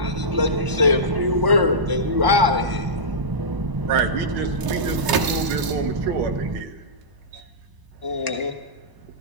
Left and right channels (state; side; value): late; left; 1.0 ms